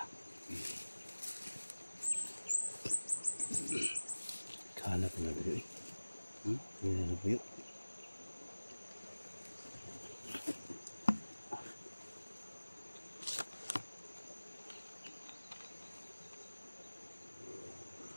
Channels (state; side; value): inverted; both; correlation -1.00